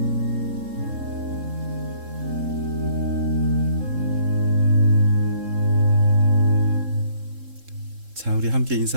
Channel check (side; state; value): left; late; 3.7 ms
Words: 자, 우리 함께